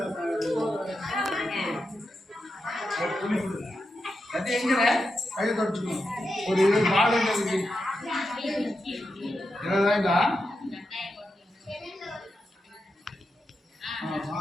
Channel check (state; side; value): normal; both; correlation 0.87